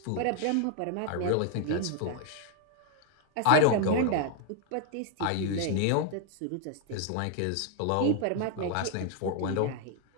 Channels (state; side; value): different; both; correlation 0.00